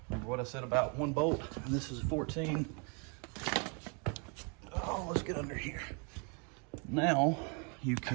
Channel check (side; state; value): left; quieter; 35.3 dB